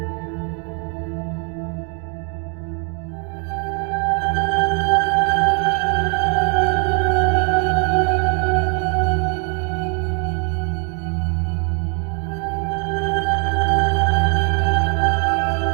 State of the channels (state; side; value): quieter; left; 38.3 dB